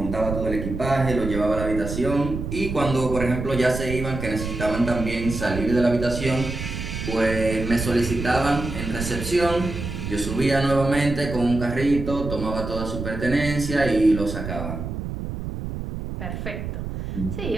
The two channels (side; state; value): right; noise; rumble, 6 dB below the sound